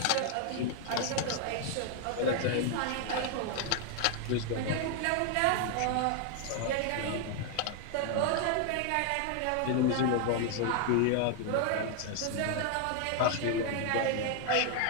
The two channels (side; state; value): both; different; correlation 0.00